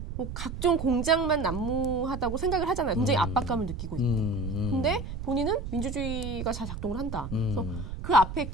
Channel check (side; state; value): right; noise; rumble, 7 dB below the sound